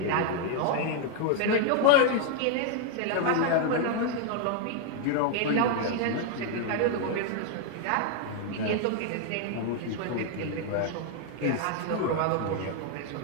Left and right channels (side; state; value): both; different; correlation 0.00